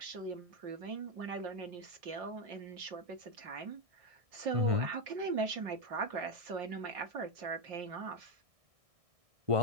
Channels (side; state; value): left; late; 1.6 ms